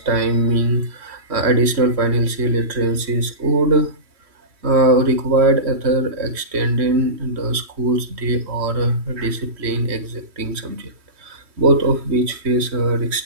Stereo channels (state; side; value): late; left; 3.1 ms